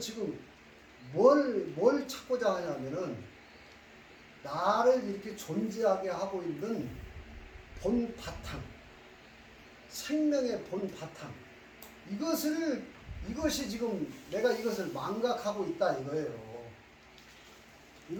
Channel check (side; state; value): both; identical; correlation 1.00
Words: 뭘 찾고자 하냐면은 나를 이렇게 존재하게 하고 있는 본 바탕, 생명의 본 바탕. 이것이 지금 내가 이것을 망각하고 있다 이거예요.